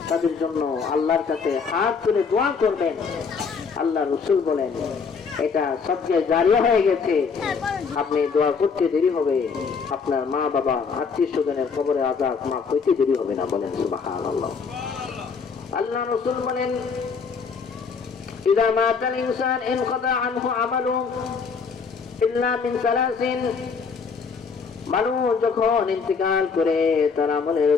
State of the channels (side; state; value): right; quieter; 5.5 dB